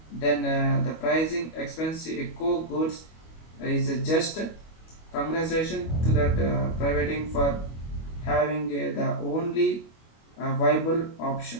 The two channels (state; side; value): late; right; 25 ms